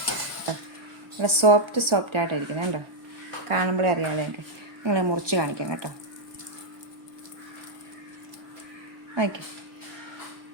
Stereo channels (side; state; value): left; late; 1.3 ms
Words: ഇവിടെ സോഫ്റ്റ് ആയിട്ടിരിക്കണം കേട്ടോ, കാണുമ്പോഴേ അറിയാമല്ലോ എനിക്ക്. നിങ്ങളെ മുറിച്ച് കാണിക്കാം കേട്ടോ. ഓക്കെ,